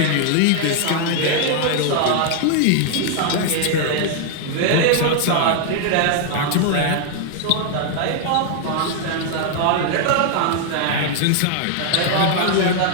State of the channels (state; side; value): different; both; correlation 0.00